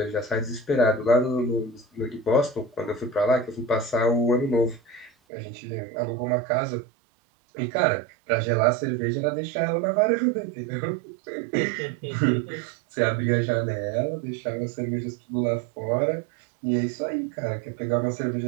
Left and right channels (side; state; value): left; drops out; at 5.1 s